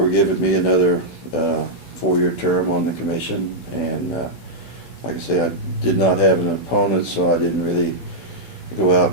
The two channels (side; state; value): right; late; 15 ms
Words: giving me another 4-year term on the commission, and like I say, I did not have an opponent, so I didn't really go out